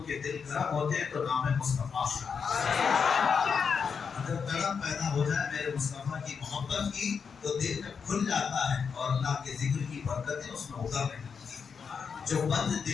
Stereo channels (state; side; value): quieter; right; 6.1 dB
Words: کے دل گرم ہوتے ہیں تو نام مصطفیٰ اگر گرم پیدا ہو جائے میرے مصطفیٰ کی محبت کی تو دل میں کھل جاتا ہے اور اللہ کے ذکر کی برکتیں اس میں اترنے لگتی ہیں۔ جو بند